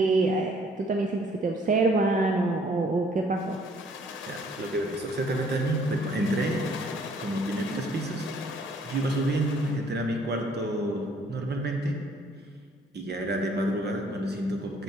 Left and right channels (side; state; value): both; normal; correlation 0.61